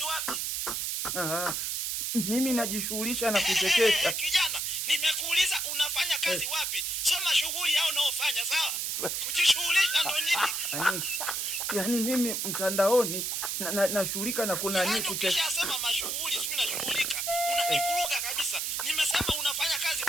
wapi? Mimi najishughulisha na kuchekesha. Kijana, nimekuuliza unafanya kazi wapi? Sema shughuli yao unaofanya, sawa? Kujishughulisha ndo nini? Yaani mimi mtandaoni nashughulika na kuna nini kuchekesha. Ukishasema mashughuli, sio nashughulika. Unanivuruga kabisa. Nimesema unafanya kazi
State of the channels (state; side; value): noise; right; hiss, 1 dB below the sound